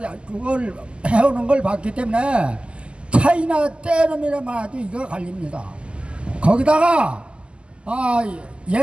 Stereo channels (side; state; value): left; late; 0.052 ms